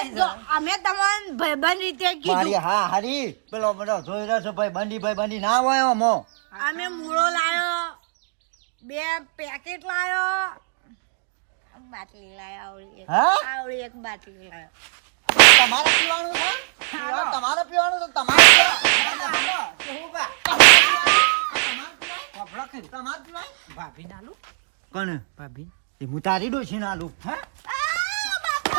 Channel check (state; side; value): silent; left; 64 dB below the other